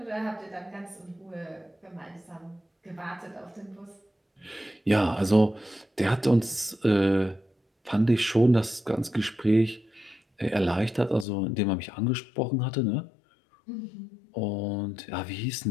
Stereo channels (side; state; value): right; drops out; at 11.2 s